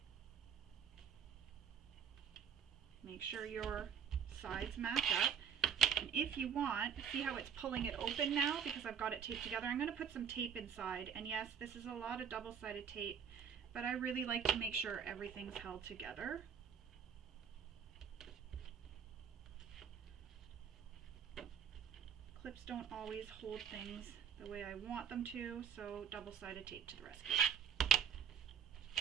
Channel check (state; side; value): quieter; left; 7.8 dB